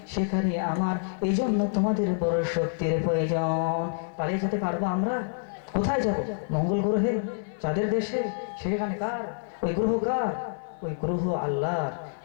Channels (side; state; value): right; silent; 60 dB below the other